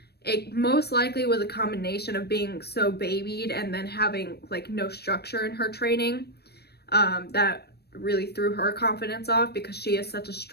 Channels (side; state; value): right; late; 0.47 ms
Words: It most likely was a combination of being so babied and then having like no structure in her training that really threw her confidence off, because she is such a